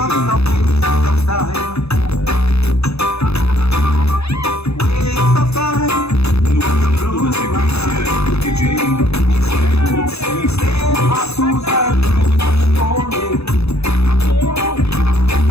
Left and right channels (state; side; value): late; right; 0.79 ms